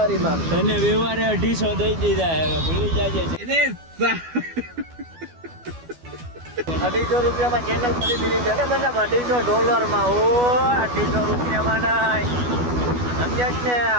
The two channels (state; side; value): late; left; 12 ms